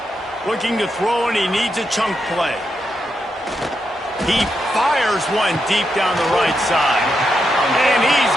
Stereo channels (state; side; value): normal; both; correlation 0.84